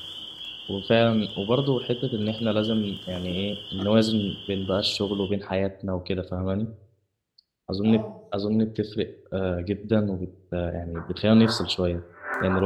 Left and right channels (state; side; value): identical; both; correlation 1.00